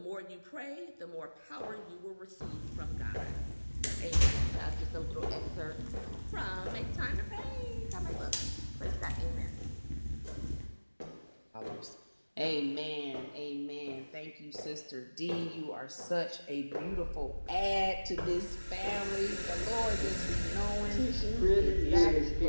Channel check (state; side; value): inverted; both; correlation -1.00